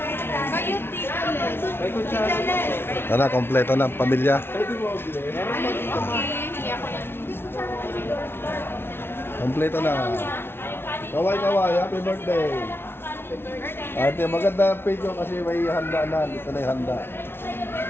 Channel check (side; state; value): right; late; 0.11 ms